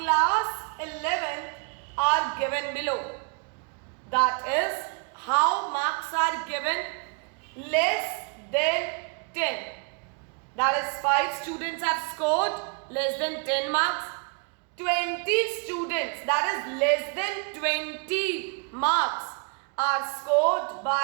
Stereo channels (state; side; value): quieter; left; 36.2 dB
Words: 11 are given below. That is, how marks are given: less than 10. That is, 5 students have scored less than 10 marks. 20 students, that is less than 20 marks, are scored